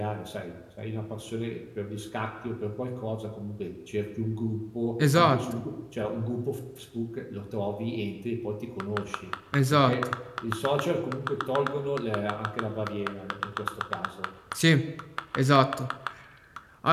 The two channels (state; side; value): identical; both; correlation 1.00